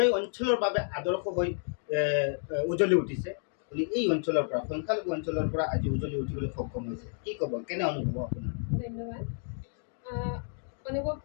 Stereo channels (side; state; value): right; silent; 57 dB below the other